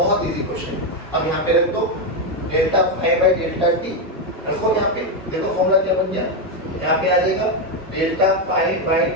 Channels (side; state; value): both; normal; correlation 0.06